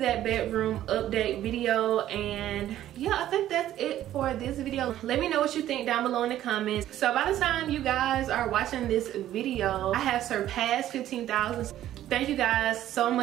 bedroom update video, and yeah, I think that's it for this video. Let me know what you think down below in the comments. So by the time you guys are watching this video, I have surpassed 15,000. Thank you guys so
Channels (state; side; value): quieter; left; 12.7 dB